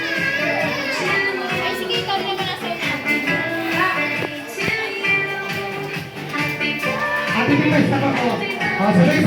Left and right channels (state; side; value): identical; both; correlation 1.00